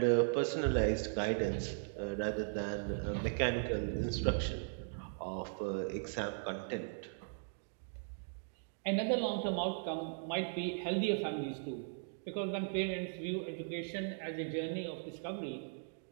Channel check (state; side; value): silent; left; digital silence